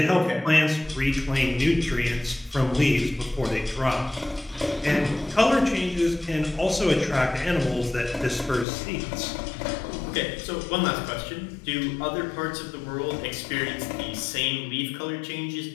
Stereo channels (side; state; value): right; drops out; at 8.7 s